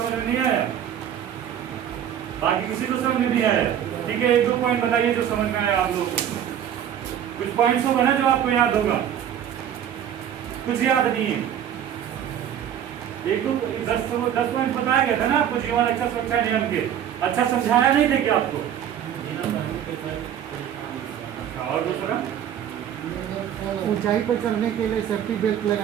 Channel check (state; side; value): quieter; left; 9.8 dB